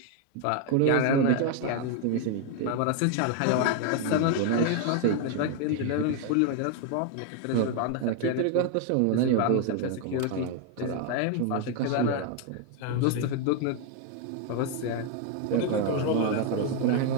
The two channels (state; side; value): different; both; correlation 0.01